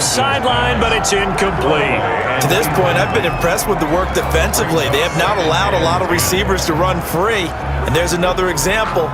sideline, but it's incomplete. To this point, I've been impressed with the work defensively. They have not allowed a lot of receivers to run free. And there's another example,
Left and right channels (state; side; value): identical; both; correlation 1.00